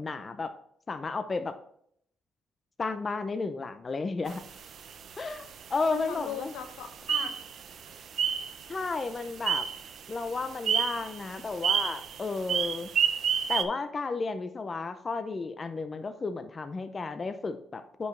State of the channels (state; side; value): normal; both; correlation 0.74